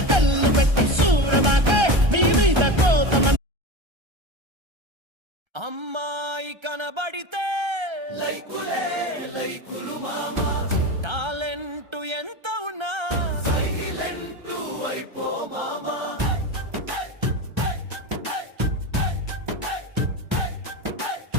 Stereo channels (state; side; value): late; left; 1.3 ms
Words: కళ్ళు పెట్టి సూరమాకే నీ మీద కోపం. అమ్మాయి కనబడితే లైకులే లైకులు మామా, టాలెంట్ ఎంత ఉన్నా సైలెంట్ అయిపో మామా.